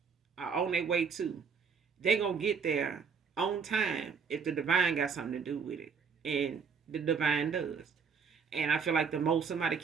on their way to, they gonna get there on time if the divine got something to do with it, and the divine does. And I feel like the most somebody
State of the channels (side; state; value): left; quieter; 6.0 dB